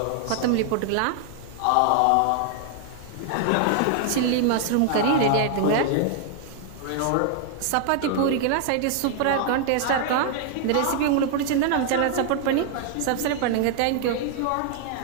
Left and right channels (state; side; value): different; both; correlation 0.00